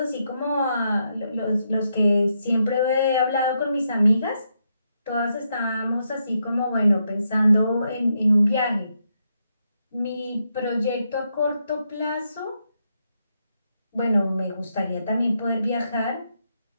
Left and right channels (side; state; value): both; inverted; correlation -0.81